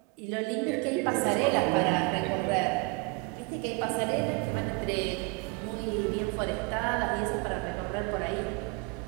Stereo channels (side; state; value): left; quieter; 27.9 dB